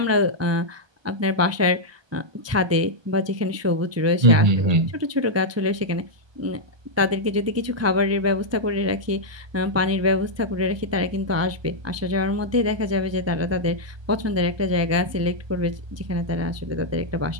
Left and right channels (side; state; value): left; late; 1.2 ms